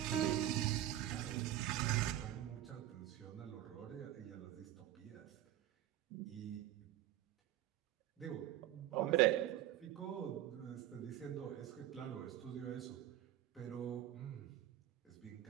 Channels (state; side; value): quieter; left; 12.9 dB